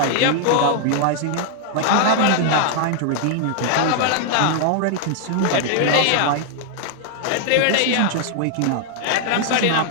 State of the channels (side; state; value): both; different; correlation -0.01